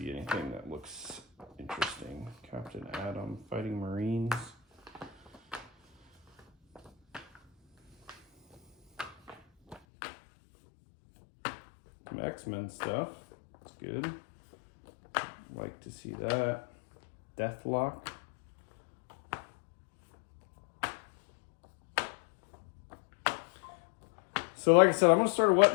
anything that looks interesting. Captain Atom, Fighting Marines. Some X-Men stuff. That's good. Like to see that. Deathlock. So like I said, I'm going to start a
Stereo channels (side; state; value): right; drops out; at 9.8 s